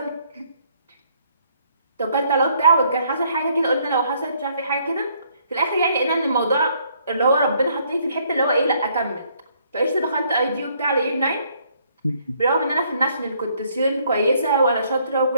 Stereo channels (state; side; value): inverted; both; correlation -0.67